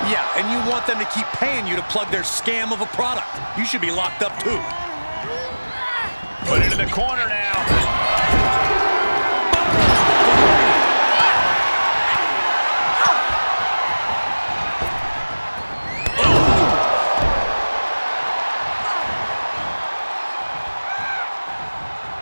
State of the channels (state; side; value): inverted; both; correlation -1.00